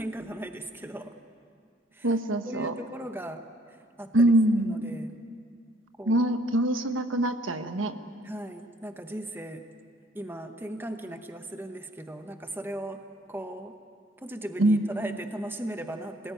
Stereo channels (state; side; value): normal; both; correlation 0.61